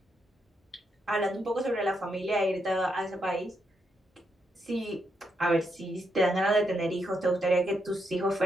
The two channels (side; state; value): both; normal; correlation 0.80